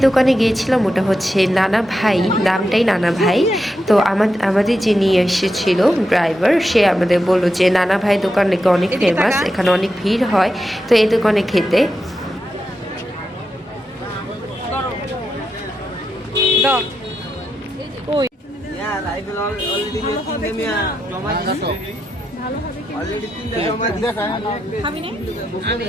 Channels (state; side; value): normal; both; correlation 0.86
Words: দোকানে গিয়েছিলাম ওটা হচ্ছে নানা ভাই, নামটাই নানা ভাই। তো আমাদের যে নিয়ে এসেছিল ড্রাইভার, সে আমাদের বললো যে নানা ভাই দোকান নাকি অনেক ফেমাস, এখানে অনেক ভিড় হয়, তো এই দোকানে খেতে।